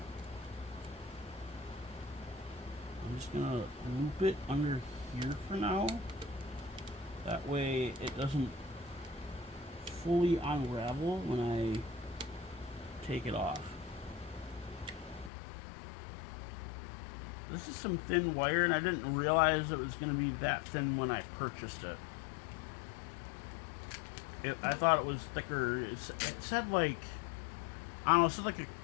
I'm just gonna loop it under here for now. That way it doesn't fully unravel when I take it off. This is some thin wire, and I didn't realize it was going to be that thin when I purchased it. I thought it was thicker. It said like, I don't know, it said like a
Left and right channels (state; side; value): drops out; right; at 15.3 s